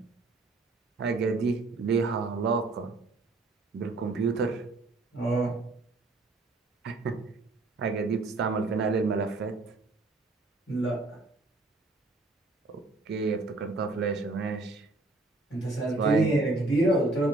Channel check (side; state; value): left; quieter; 3.2 dB